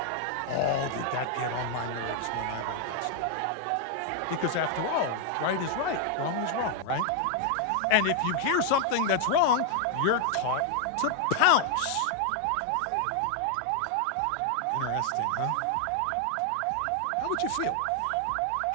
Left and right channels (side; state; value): both; different; correlation 0.00